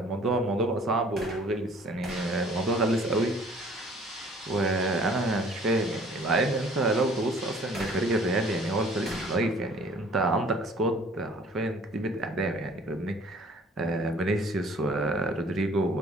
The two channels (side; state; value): both; normal; correlation 0.53